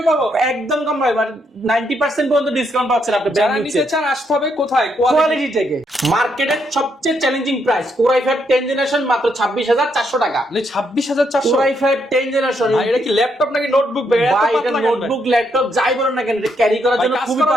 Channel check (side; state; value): both; normal; correlation 0.76